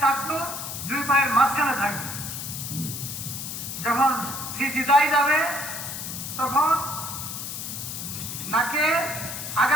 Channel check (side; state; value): left; noise; hiss, 6 dB below the sound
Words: টাকলু 2 পায়ের মাঝখানে থাকবে। যখন সিজদায় যাবে তখন নাকে